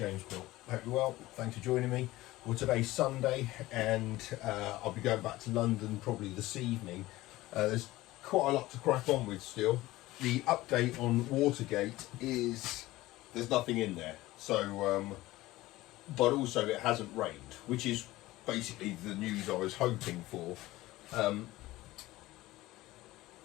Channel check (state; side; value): quieter; right; 17.8 dB